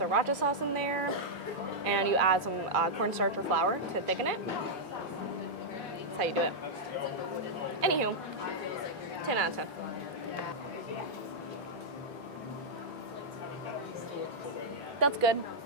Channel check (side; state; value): both; normal; correlation -0.06